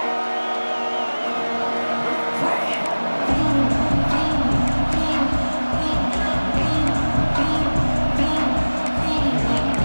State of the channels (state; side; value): inverted; both; correlation -1.00